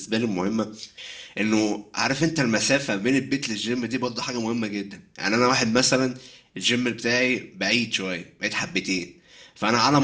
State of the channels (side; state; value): both; identical; correlation 1.00